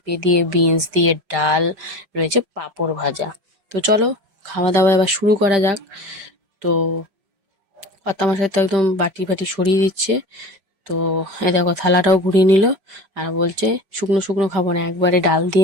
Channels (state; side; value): late; left; 5.0 ms